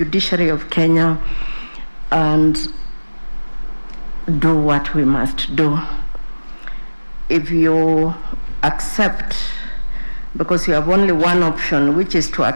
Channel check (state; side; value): inverted; both; correlation -1.00